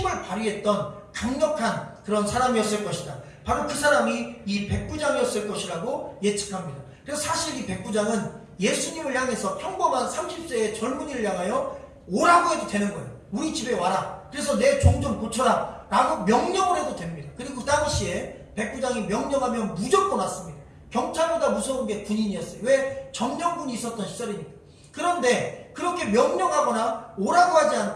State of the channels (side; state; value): both; identical; correlation 1.00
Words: 발휘했던 강력한 그런 사람이었을 것이다. 바로 그 사람이 이 백부장이었을 것이라고 예측합니다. 그래서 사실 이 백부장은 예수님을 향해서 평범한 30세의 젊은이를 향하여 오라고 해도 되는 거예요. 우리 집에 와라. 그래서 내 종 좀 고쳐라. 라고 명령을 해도 됩니다. 그리고 그 당시에 백부장이 명령하면 무조건 왔습니다. 경찰보다 무서운 게 군인이었어요. 왜? 점령군이 있었던 시절이니까. 그런데 그렇게 명령하거나 오라고 하지